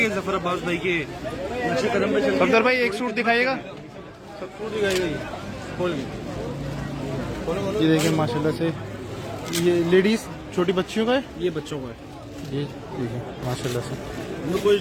जफर अब्बास भाई के नक्शे कदम पे चल। सफदर भाई एक सूट दिखाइएगा। ये देखिए माशाल्लाह से, ये लेडीज छोटी बच्चियों का है, ये बच्चों का है। ये देखिए माशाल्लाह से। हमने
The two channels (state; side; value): identical; both; correlation 1.00